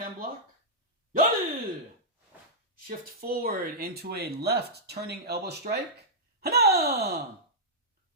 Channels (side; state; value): both; normal; correlation -0.11